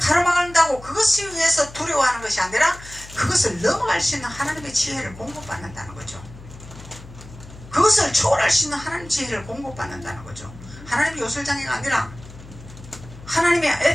그것을 위해서 두려워하는 것이 아니라 그것을 넘어갈 수 있는 하나님의 지혜를 공급받는다는 거죠. 그것을 초월할 수 있는 하나님의 지혜를 공급받는다는 거죠. 하나님의 요술장애가 아니라 하나님이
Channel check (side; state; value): left; noise; hum, 18 dB below the sound